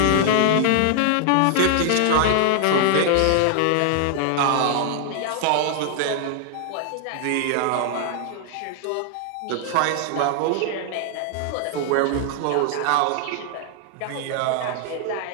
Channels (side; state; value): both; different; correlation 0.00